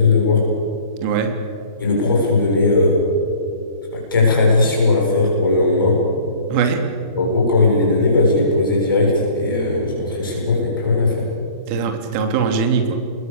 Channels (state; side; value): inverted; both; correlation -0.49